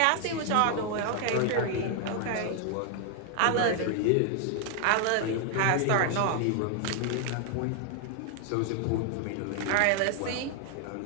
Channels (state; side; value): different; both; correlation 0.00